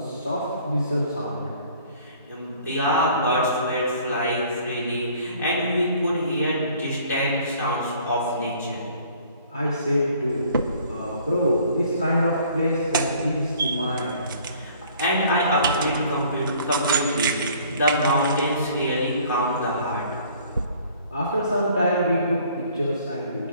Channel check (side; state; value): both; inverted; correlation -0.55